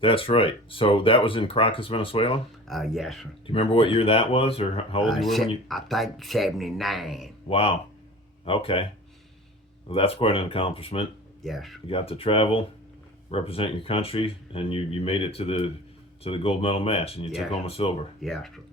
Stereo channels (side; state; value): both; normal; correlation 0.39